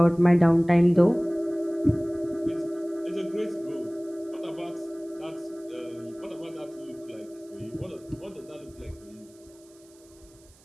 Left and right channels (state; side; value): noise; right; hiss, 28 dB below the sound